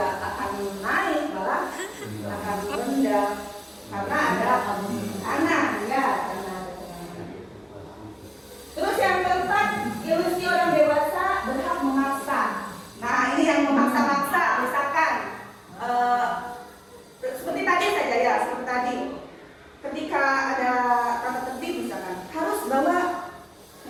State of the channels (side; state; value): both; identical; correlation 1.00